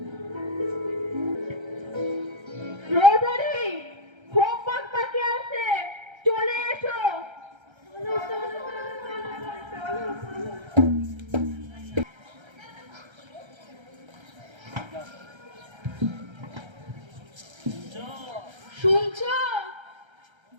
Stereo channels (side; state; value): left; late; 1.3 ms